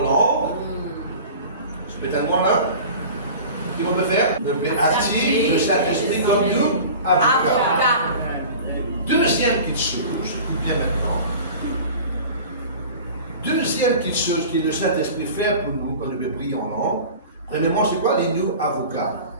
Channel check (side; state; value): both; inverted; correlation -0.39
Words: langue. Je peux tellement là. Qu'est-ce qu'on peut faire? On peut activer le Saint-Esprit comme nous avocats. Deuxième petite chose qui vient maintenant. Deuxième petite chose que le Saint-Esprit fait pour nous quand nous peut prier en langue. Premièrement, c'est quoi les nous avocats?